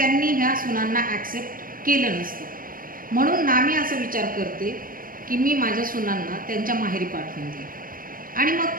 ह्या सुनांना ॲक्सेप्ट केलं नसतं. म्हणून नामी असा विचार करते की मी माझ्या सुनांना त्यांच्या माहेरी पाठवून देईन. आणि मग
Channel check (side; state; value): left; late; 0.41 ms